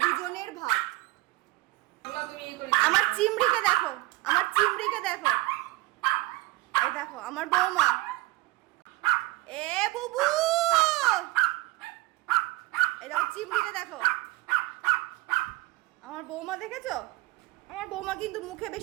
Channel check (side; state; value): left; quieter; 20.1 dB